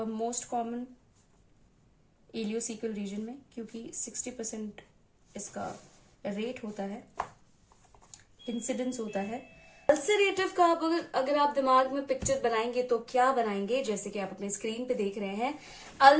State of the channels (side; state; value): both; identical; correlation 1.00